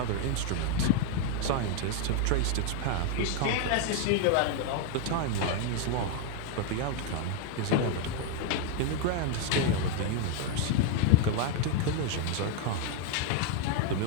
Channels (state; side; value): different; both; correlation 0.01